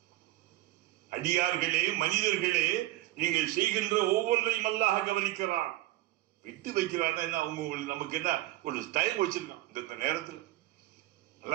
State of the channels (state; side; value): quieter; left; 16.7 dB